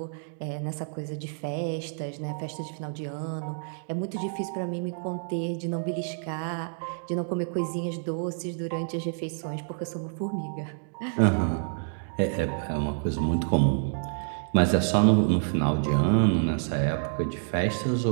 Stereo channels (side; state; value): left; silent; digital silence